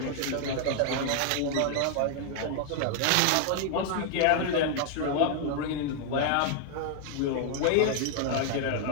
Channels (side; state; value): both; different; correlation 0.00